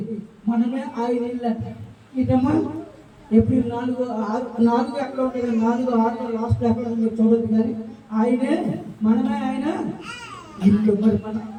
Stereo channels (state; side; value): identical; both; correlation 1.00